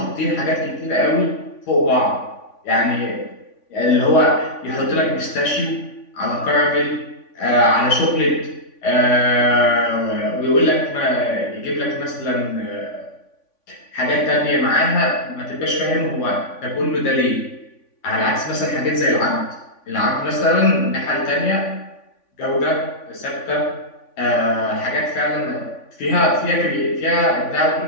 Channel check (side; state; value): right; late; 3.5 ms